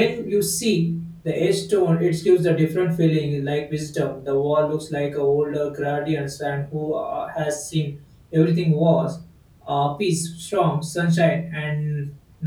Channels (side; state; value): both; identical; correlation 1.00